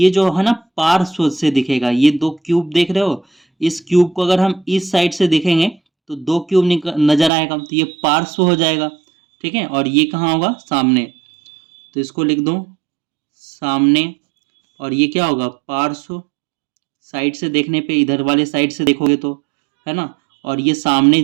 जो है ना पार्श्व से दिखेगा, ये दो क्यूब देख रहे हो, इस क्यूब को अगर हम इस साइड से देखेंगे तो दो क्यूब नजर आएगा, तो ये पार्श्व हो जाएगा, ठीक है। और ये कहाँ होगा, सामने, तो इसको लिख दूं सामने। और ये क्या होगा, पार्श्व, साइड से देखने पे, इधर वाले साइड से देखोगे तो, है ना। और ये सामने,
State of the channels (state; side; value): drops out; left; at 7.3 s